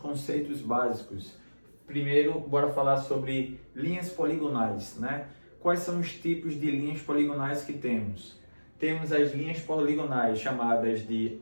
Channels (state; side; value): inverted; both; correlation -1.00